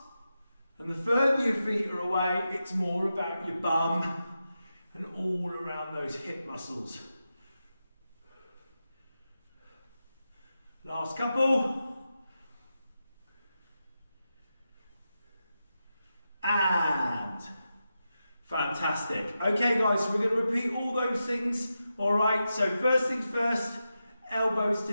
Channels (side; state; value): both; inverted; correlation -0.89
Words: and the further your feet are away, it's more about your bum and all around those hip muscles. Last couple. And fantastic. Okay guys, so we're going to repeat all those things. Alright, so first things first, elbows